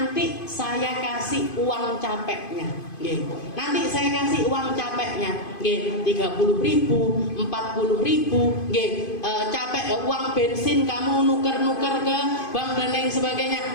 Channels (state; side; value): late; right; 2.5 ms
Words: saya kasih uang capeknya. Nanti saya kasih uang capeknya, 30.000, 40.000, capek uang bensin kamu nuker-nuker ke bank dan lain sebagainya.